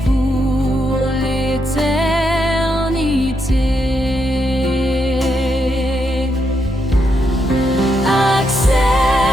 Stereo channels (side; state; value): both; normal; correlation 0.80